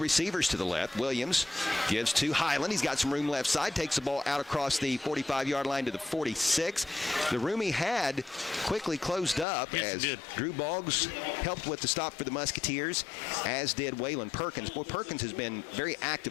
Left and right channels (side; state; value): right; drops out; at 9.5 s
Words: receivers to the left. Williams gives to Highland. He's got some room left side. Takes the ball out across the 45-yard line to the 46. The room he had quickly closed up as Drew Boggs helped with the stop for the Musketeers, as did Waylon Perkins. Boy, Perkins has been very